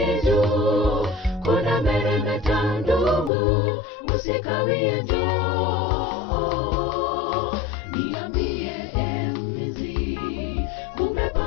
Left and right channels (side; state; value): right; drops out; at 3.3 s